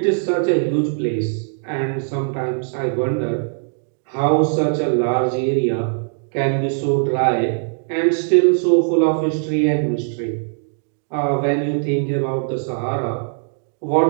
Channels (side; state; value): left; silent; digital silence